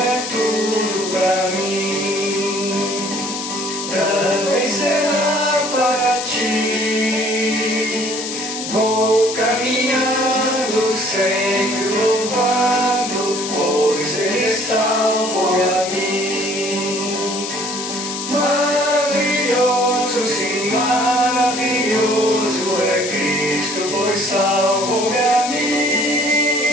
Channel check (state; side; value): noise; left; hiss, 6 dB below the sound